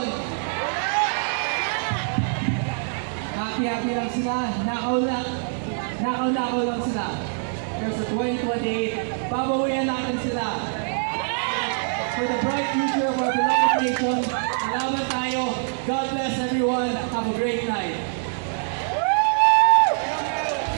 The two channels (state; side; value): silent; left; digital silence